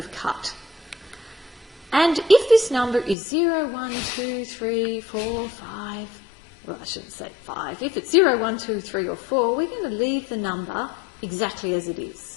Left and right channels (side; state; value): right; drops out; at 3.2 s